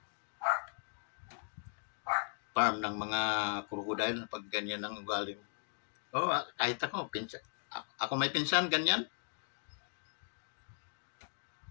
farm ng mga crocodile pag ganyan ang ugali mo. Kahit ako, ako may pinsan, ganyan.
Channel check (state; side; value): silent; right; digital silence